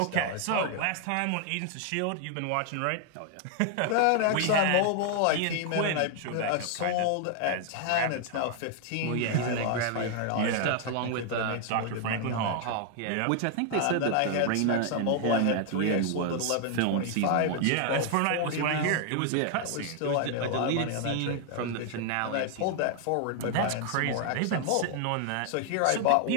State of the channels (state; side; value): different; both; correlation 0.00